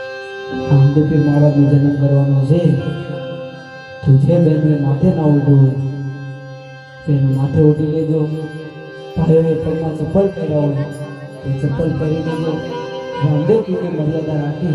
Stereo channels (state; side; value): identical; both; correlation 1.00